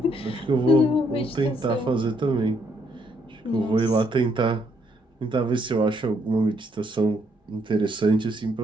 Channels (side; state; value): both; normal; correlation 0.72